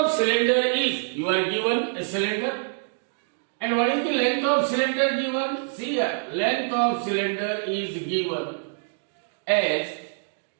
cylinder is, you are given a cylinder, and what is the length of cylinder given? See here, length of cylinder is given as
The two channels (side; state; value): left; silent; digital silence